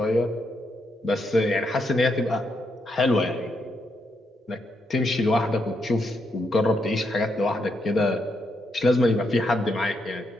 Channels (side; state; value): both; normal; correlation 0.79